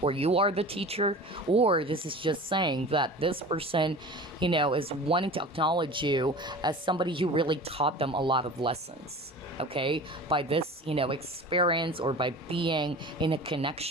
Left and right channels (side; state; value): both; normal; correlation 0.37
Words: or you are the teacher, or this is just saying that this person, is wanting to acknowledge you as somebody who really taught them a lot of lessons. Okay, by this, experience or by being in a